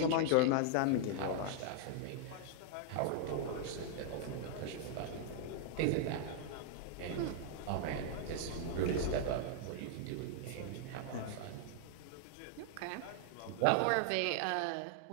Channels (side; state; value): both; different; correlation -0.01